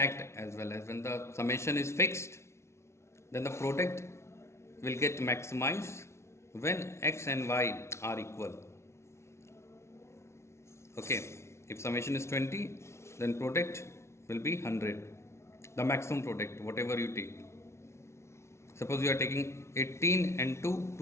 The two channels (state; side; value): late; right; 0.13 ms